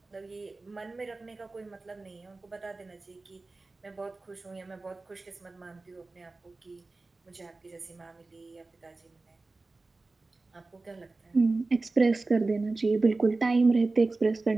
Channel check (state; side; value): quieter; left; 3.4 dB